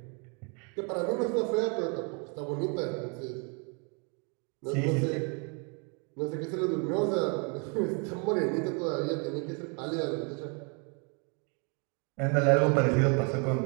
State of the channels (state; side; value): quieter; left; 35.5 dB